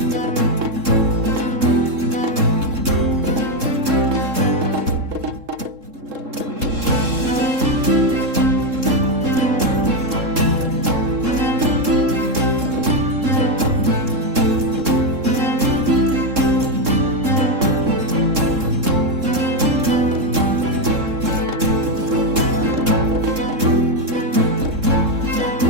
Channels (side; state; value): left; late; 3.7 ms